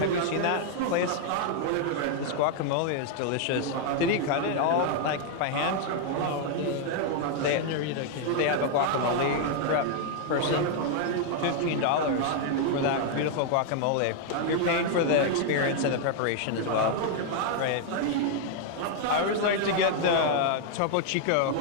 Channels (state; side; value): different; both; correlation 0.00